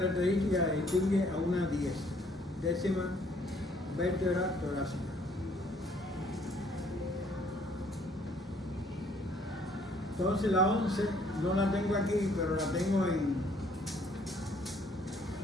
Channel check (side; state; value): both; normal; correlation 0.63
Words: que distingue a una 10, décima vértebra torácica. Entonces la 11 no la tengo aquí, pero la tengo en